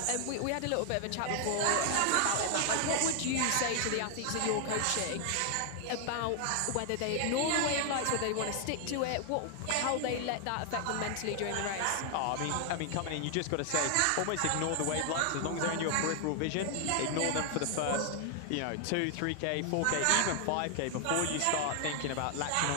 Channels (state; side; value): different; both; correlation 0.00